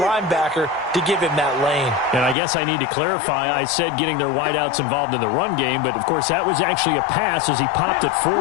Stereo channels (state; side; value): drops out; right; at 2.4 s